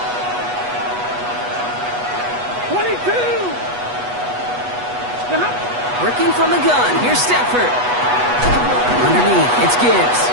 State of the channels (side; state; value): left; late; 8.2 ms